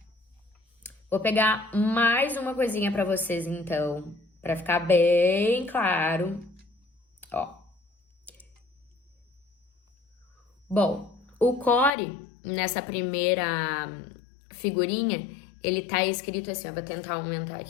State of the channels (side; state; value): right; drops out; at 11.9 s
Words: Vou pegar mais uma coisinha para vocês, então, para ficar bem claro. Ó. Bom, o core, nessa primeira figurinha, ele tá escrito assim, eu vou tentar aumentar